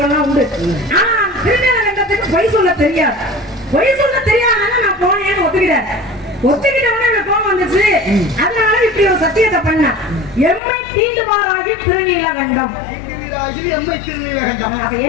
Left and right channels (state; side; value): drops out; right; at 10.6 s